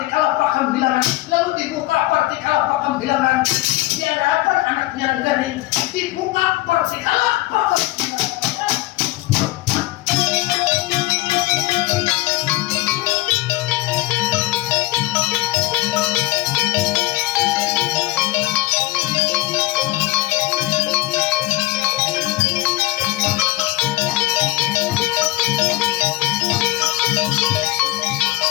pakam bilangan, lalu dibuka partikal pakam bilangan. Di hadapan anaknya Rengganing dibuka partikal pakam bilangan.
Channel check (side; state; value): right; quieter; 18.0 dB